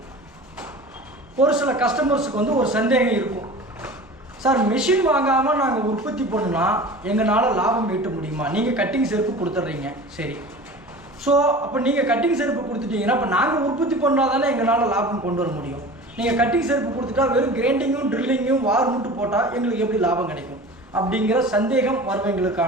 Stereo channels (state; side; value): normal; both; correlation 0.38